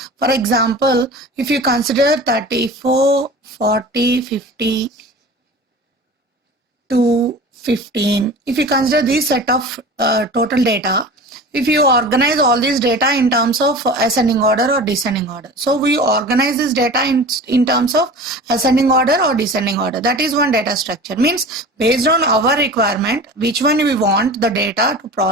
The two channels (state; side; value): normal; both; correlation 0.37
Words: For example, if you consider 34, 40, 50, 2, 15, if you consider this set of total data, if you organize all this data in terms of ascending order or descending order. So we organize this data in terms of ascending order or descending order. That is one data structure. Means based on our requirement, which one we want the data to